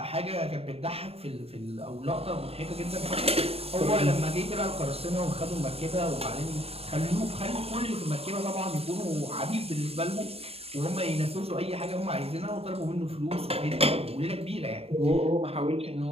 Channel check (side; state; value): left; late; 0.28 ms